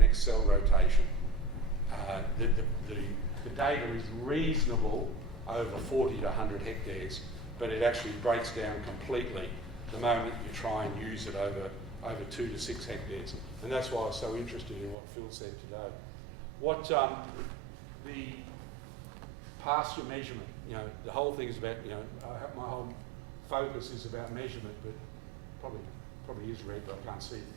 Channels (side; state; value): left; drops out; at 15.0 s